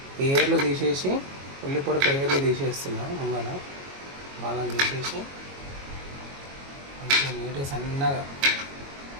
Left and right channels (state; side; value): late; left; 22 ms